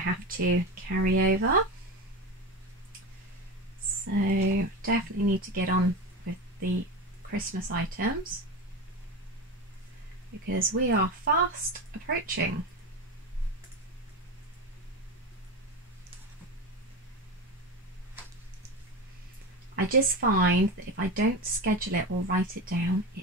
to carry over. So definitely need to get on with the Christmas items because we are fast approaching. I just find that if I don't schedule it or write it down,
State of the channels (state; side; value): normal; both; correlation 0.23